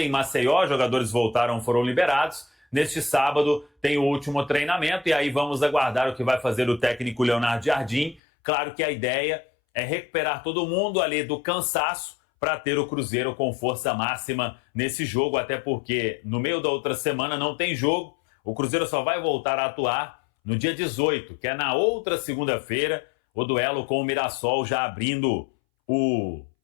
Maceió, jogadores voltaram, foram liberados. Neste sábado tem o último treinamento e aí vamos aguardar o que vai fazer o técnico Leonardo Jardim. Claro que a ideia é recuperar todo mundo ali do cansaço para ter o Cruzeiro com força máxima nesse jogo, até porque no meio da outra semana não tem jogo. O Cruzeiro só vai voltar a atuar no dia 18, que é na outra segunda-feira, o duelo com o Mirassol, já abrindo o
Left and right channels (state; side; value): drops out; right; at 8.2 s